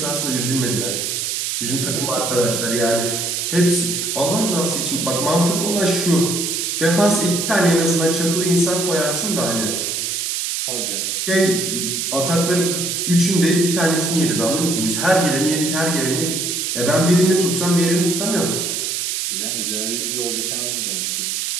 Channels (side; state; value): right; noise; hiss, 1 dB below the sound